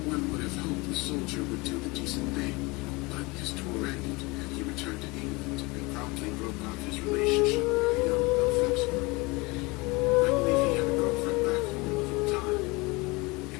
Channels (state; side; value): quieter; right; 25.1 dB